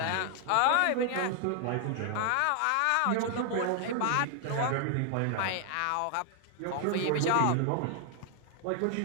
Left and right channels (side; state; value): both; different; correlation 0.00